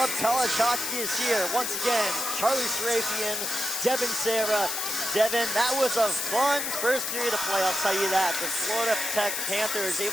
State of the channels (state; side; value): noise; left; hiss, 2 dB below the sound